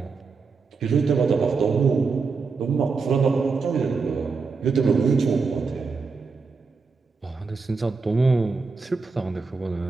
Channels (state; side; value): quieter; left; 4.7 dB